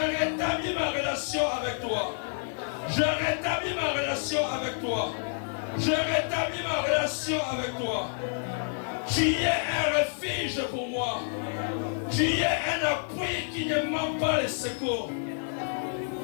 ma relation avec toi. Je rétablis ma relation avec toi. Je rétablis ma relation avec toi. Tu es un refuge pour moi. Tu es un appui qui ne manque pas les secours.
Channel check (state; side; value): silent; right; digital silence